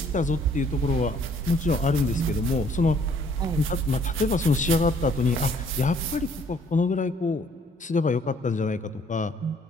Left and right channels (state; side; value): normal; both; correlation 0.61